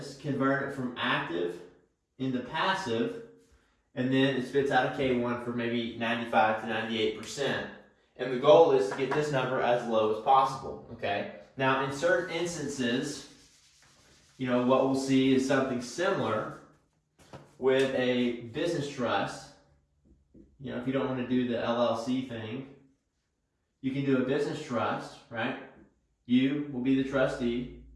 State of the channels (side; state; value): both; identical; correlation 1.00